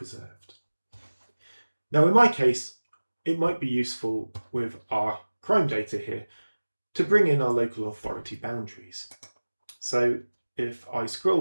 Now in my case, it might be useful with our crime data here to bring in our local authority boundaries. So if I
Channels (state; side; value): inverted; both; correlation -1.00